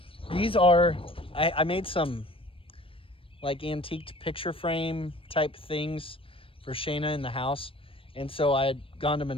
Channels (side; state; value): right; late; 0.26 ms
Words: These are, I made some like antiqued picture frame type things for Shayna in the house. And so I had gone to